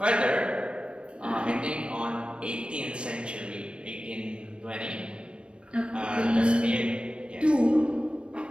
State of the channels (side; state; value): left; late; 0.057 ms